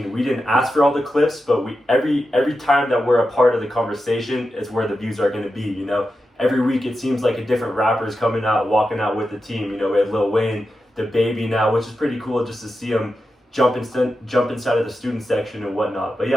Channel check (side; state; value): both; normal; correlation 0.90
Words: we didn't ask for all the clips, but we every time that we're a part of the conversation is where the views are going to be. You know, every week it seems like a different rapper is coming out, walking out with the team. You know, we had Lil Wayne, the Baby now, which is pretty cool just to see him jump inside of the student section and whatnot. But